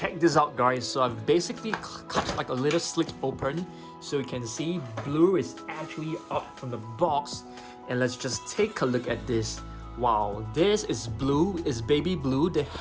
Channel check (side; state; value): both; identical; correlation 1.00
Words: this out guys. So I've basically cut like a little slit open, so you can see Blue is actually up from the box. And let's just take a look at this. Wow, this is Blue, is baby Blue. The